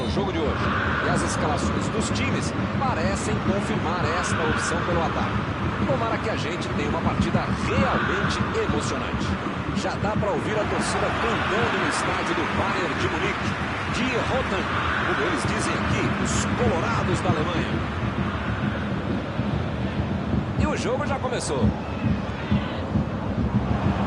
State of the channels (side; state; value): both; identical; correlation 1.00